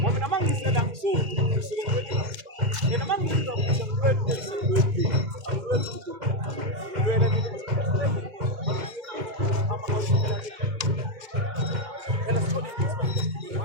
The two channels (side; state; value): left; late; 2.1 ms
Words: when a man said I'm so, when a man said